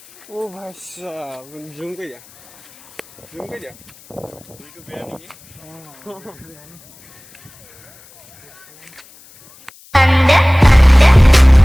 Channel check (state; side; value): noise; left; hiss, 26 dB below the sound